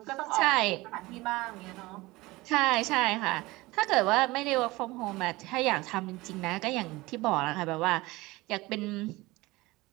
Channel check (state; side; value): quieter; left; 20.8 dB